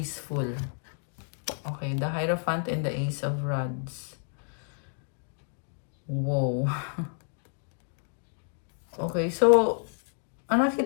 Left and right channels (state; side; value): silent; right; digital silence